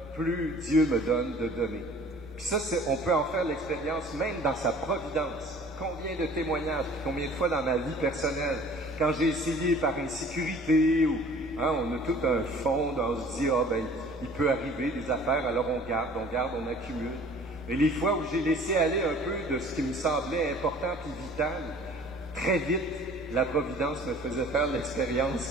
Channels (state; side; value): noise; right; rumble, 24 dB below the sound